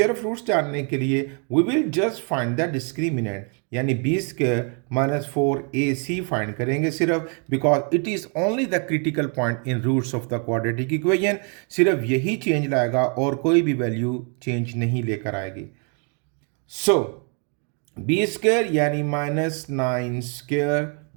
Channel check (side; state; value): left; quieter; 38.9 dB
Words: ऑफ फ्रूट्स जानने के लिए we will just find the discriminant, यानी बी स्क्वायर -4ac फाइंड करेंगे सिर्फ, because it is only the critical point in roots of the quadratic equation. सिर्फ यही चेंज लाएगा और कोई भी वैल्यू चेंज नहीं लेकर आएगी। सो बी स्क्वायर यानी -9 स्क्वायर